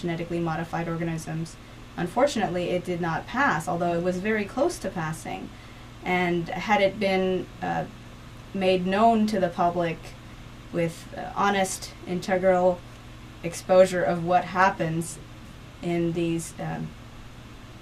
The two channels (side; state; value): both; identical; correlation 1.00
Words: modified organisms. Unfortunately, it did not pass, although it was very close to passing. And had it been made known to the public with honest, integral exposure of what happens in these